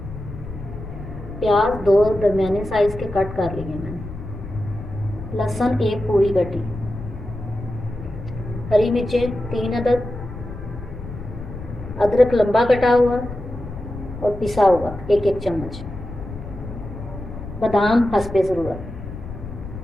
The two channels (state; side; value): noise; left; rumble, 11 dB below the sound